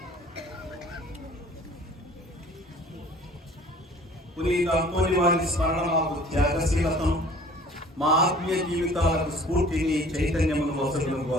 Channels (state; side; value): normal; both; correlation 0.50